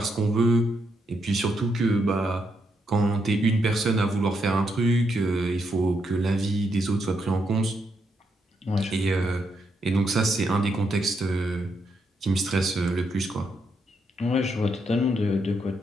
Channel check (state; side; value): normal; both; correlation 0.79